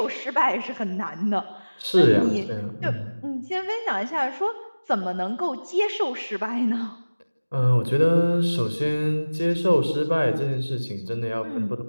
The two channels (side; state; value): both; inverted; correlation -1.00